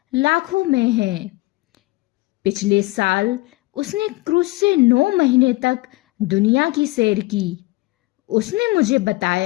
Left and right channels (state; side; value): quieter; right; 22.2 dB